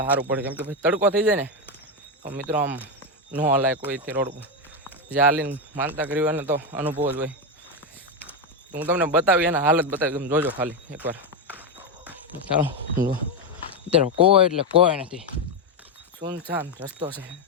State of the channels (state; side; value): normal; both; correlation 0.08